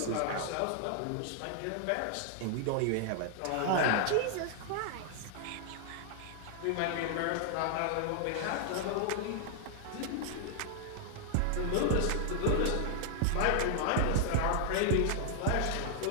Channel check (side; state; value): both; different; correlation 0.00